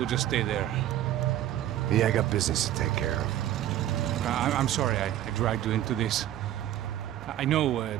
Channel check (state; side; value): quieter; left; 12.5 dB